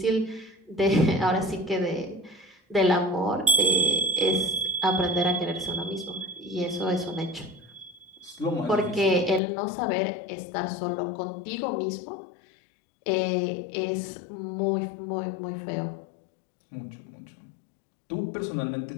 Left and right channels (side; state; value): right; drops out; at 9.4 s